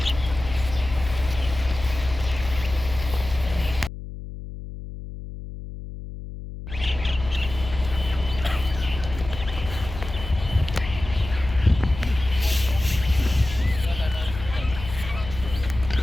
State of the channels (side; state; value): left; noise; hum, 11 dB below the sound